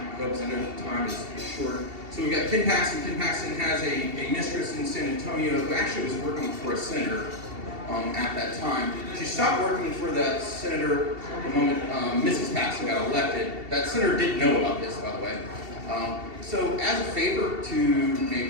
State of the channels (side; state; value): left; late; 2.7 ms